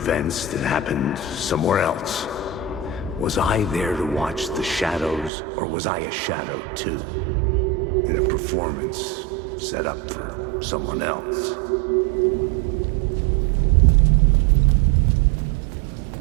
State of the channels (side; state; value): left; drops out; at 5.3 s